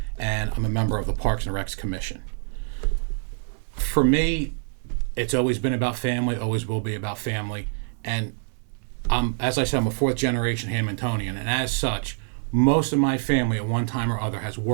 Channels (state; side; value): silent; left; 61 dB below the other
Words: and I'm a member of the Parks and Recs Commission. For me, it's always been about family, always will be about family. And as I said, I'm a fourth-generation Hamiltonian, and as such, most of my family at one time or other has